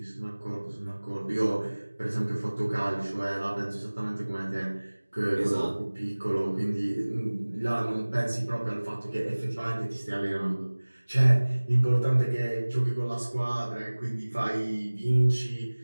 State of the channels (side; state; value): both; inverted; correlation -1.00